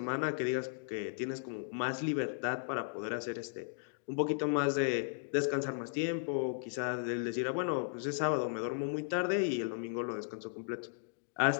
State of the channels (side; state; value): right; silent; digital silence